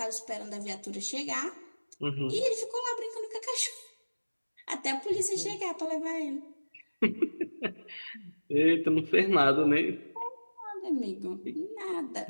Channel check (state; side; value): inverted; both; correlation -1.00